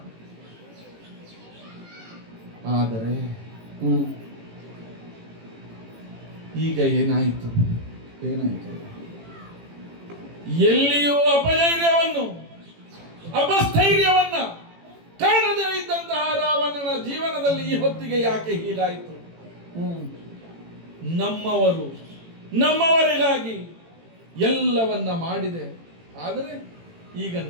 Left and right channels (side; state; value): left; late; 18 ms